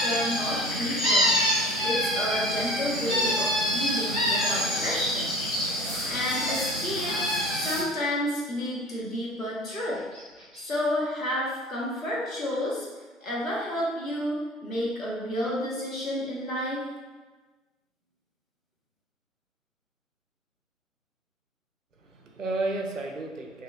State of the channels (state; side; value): normal; both; correlation 0.43